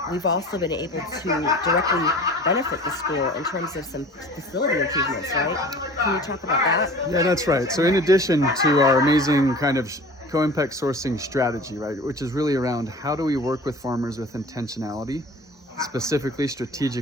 we've also been able to directly benefit the school in terms of some facility improvements, right? Can you talk about that? Yeah, that's right. So in addition to our amazing kind of co-impact sourcing strategy, right, which is really around how do we work with farmers with intentionality, specifically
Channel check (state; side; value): normal; both; correlation 0.42